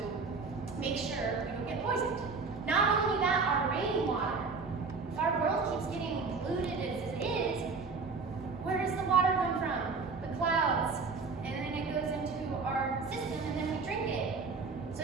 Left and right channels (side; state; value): left; quieter; 4.5 dB